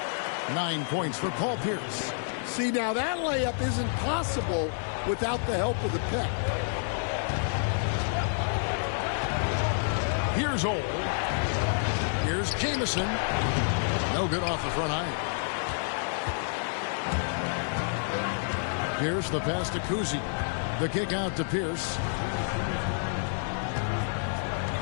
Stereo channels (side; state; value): right; silent; digital silence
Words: 9 points for Paul Pierce. See, now that layup isn't possible without the help of the pick. Here's Old. Here's Jamison. No good off the front iron. Pierce, the pass to Cousy. The kick out to Pierce.